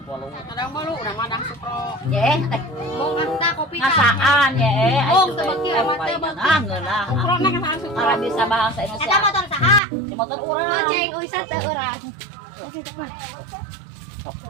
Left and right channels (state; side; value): drops out; left; at 9.8 s